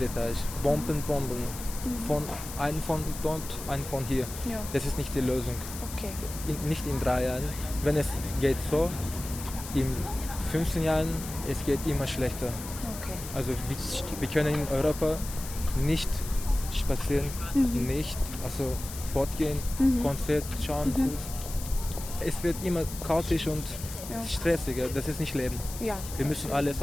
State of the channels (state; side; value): noise; left; hiss, 11 dB below the sound